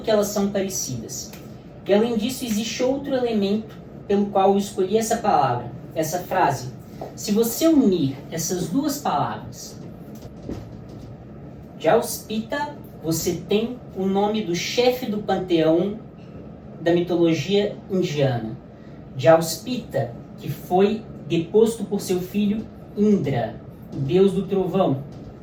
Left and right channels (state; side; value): identical; both; correlation 1.00